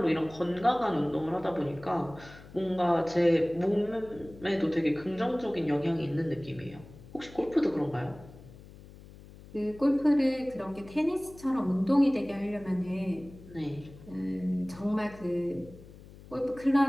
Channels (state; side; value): noise; left; hum, 19 dB below the sound